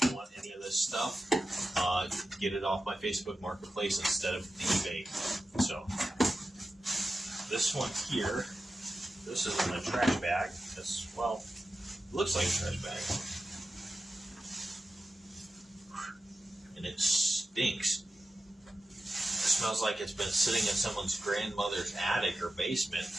you want any of this stuff, get it off my Facebook Marketplace instead of the eBay. So this one here, this is in a trash bag. It's, well, it looks like a trash bag. And it stinks. It smells like it's been sitting in someone's grandmother's attic or basement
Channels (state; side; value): normal; both; correlation 0.92